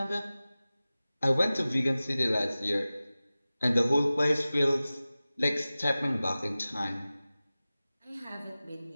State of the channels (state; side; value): inverted; both; correlation -0.97